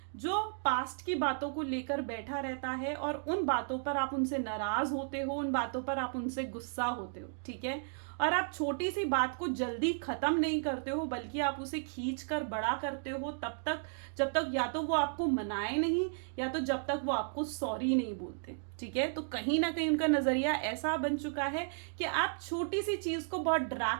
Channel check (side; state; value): left; silent; digital silence